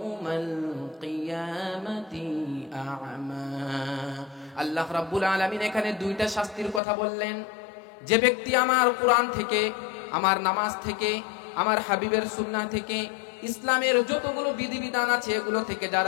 কিয়ামাতি আ'মা। আল্লাহ রাব্বুল আলামিন এখানে দুইটা শাস্তির কথা বললেন। যে ব্যক্তি আমার কোরআন থেকে, আমার নামাজ থেকে, আমার হাবিবের সুন্নাহ থেকে, ইসলামের যতগুলো বিধিবিধান আছে এগুলো থেকে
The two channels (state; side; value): drops out; right; at 6.8 s